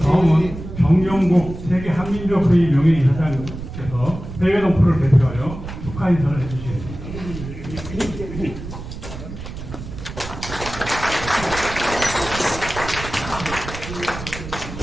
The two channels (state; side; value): noise; right; rumble, 10 dB below the sound